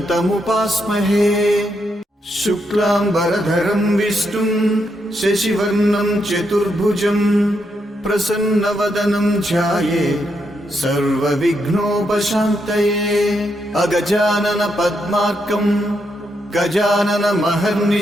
शुक्लाम्बरधरं विष्णुं शशिवर्णं चतुर्भुजं प्रसन्नवदनं ध्यायेत् सर्वविघ्नोपशान्तये अगजानन पद्मार्कं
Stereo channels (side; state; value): both; normal; correlation 0.80